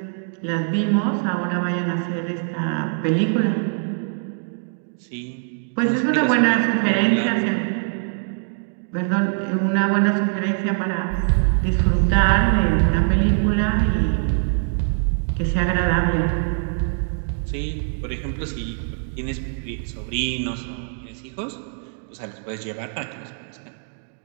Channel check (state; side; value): silent; left; digital silence